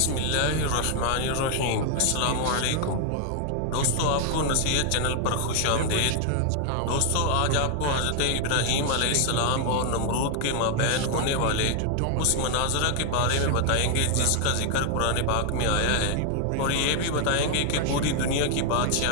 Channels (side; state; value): both; different; correlation 0.00